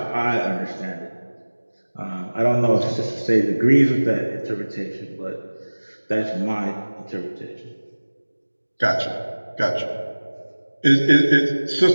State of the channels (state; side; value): inverted; both; correlation -1.00